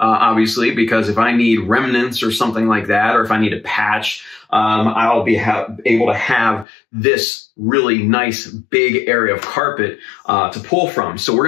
because if I need remnants or something like that, or if I need a patch, I'll be able to have this really nice big area of carpet to pull from. So we're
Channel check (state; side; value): drops out; right; at 6.7 s